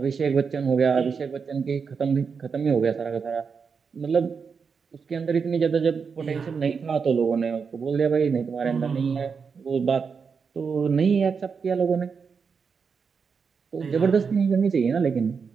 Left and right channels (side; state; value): left; quieter; 5.7 dB